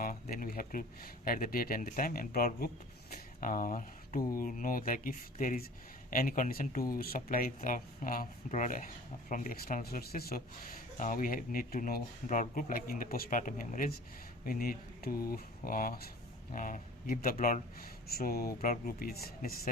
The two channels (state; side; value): normal; both; correlation 0.44